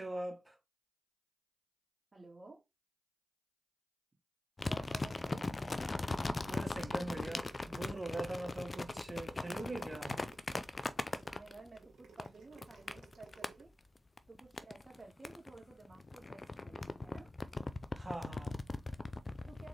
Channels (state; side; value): normal; both; correlation 0.96